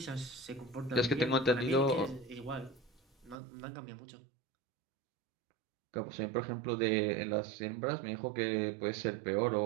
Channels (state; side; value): drops out; left; at 3.4 s